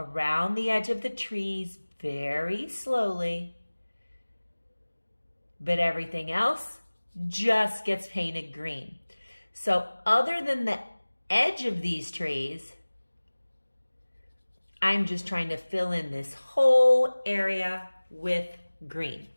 the edge of the trees very slowly, but everything else just gets painted green. So other than the edge of these trees, I'm just trying to fill in this whole area with green.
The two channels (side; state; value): both; inverted; correlation -1.00